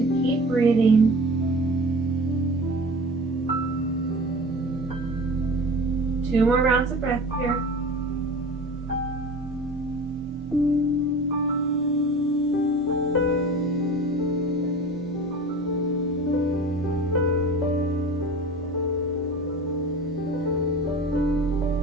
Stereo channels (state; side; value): noise; right; hum, 26 dB below the sound